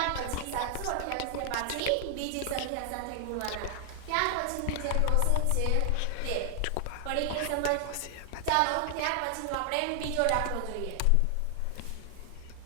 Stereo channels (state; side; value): different; both; correlation 0.00